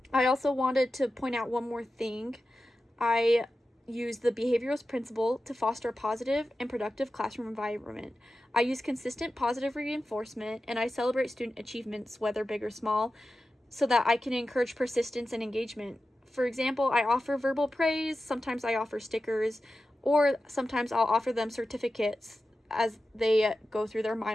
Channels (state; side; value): normal; both; correlation 0.93